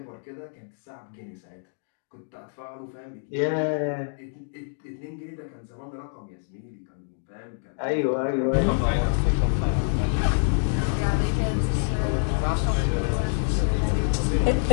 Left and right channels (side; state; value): right; silent; digital silence